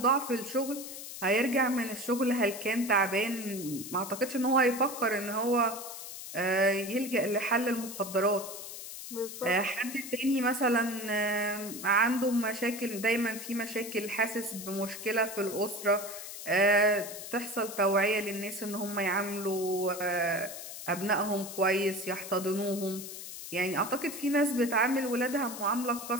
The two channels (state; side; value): noise; left; hiss, 10 dB below the sound